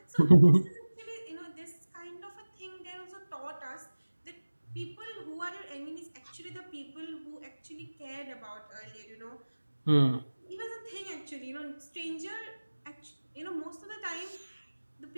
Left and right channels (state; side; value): inverted; both; correlation -1.00